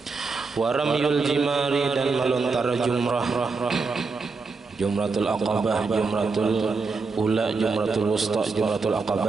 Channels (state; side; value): quieter; left; 4.3 dB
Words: Waramyul jimari, dan melontar jumrah, jumratul aqabah, jumratul ula, jumratul wusta, jumratul